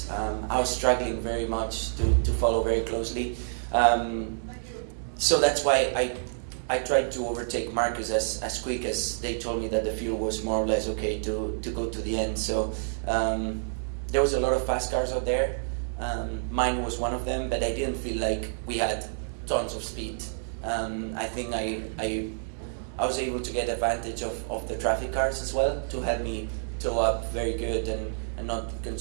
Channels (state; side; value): silent; left; digital silence